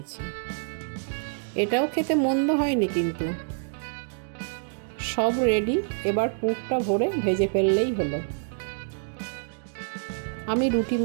এটাও খেতে মন্দ হয়নি কিন্তু। সব রেডি, এবার পুরটা ভরে ভেজে ফেললেই হলো। আমি রুটি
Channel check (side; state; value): left; silent; digital silence